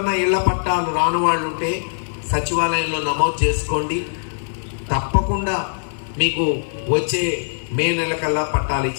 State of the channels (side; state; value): right; silent; 58 dB below the other